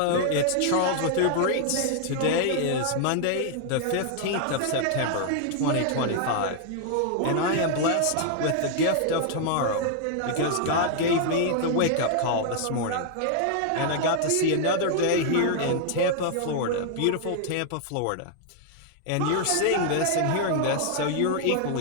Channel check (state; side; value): different; both; correlation 0.00